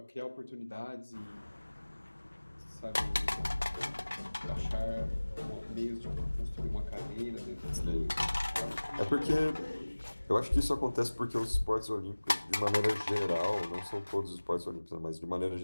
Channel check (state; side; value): inverted; both; correlation -1.00